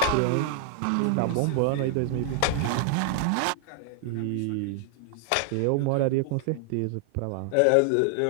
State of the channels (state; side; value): different; both; correlation 0.00